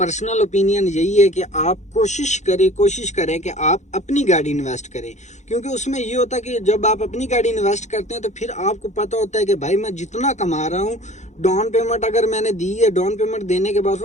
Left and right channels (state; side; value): late; right; 0.34 ms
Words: ओपिनियन यही है कि आप कोशिश करें कि आप अपनी गाड़ी इन्वेस्ट करें। क्योंकि उसमें ये होता है कि जब आप अपनी गाड़ी इन्वेस्ट करते हैं तो फिर आपको पता होता है कि भाई मैं जितना कमा रहा हूँ, डाउन पेमेंट अगर मैंने दी है, डाउन पेमेंट देने के बाद